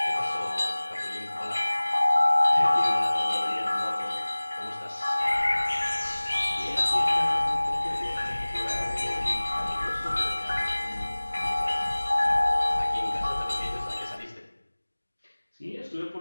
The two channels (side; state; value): both; inverted; correlation -1.00